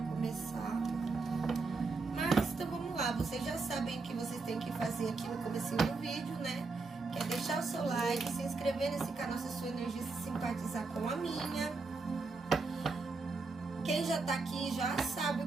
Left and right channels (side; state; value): left; quieter; 4.0 dB